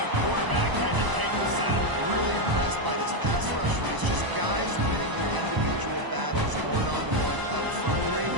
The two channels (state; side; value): late; left; 1.0 ms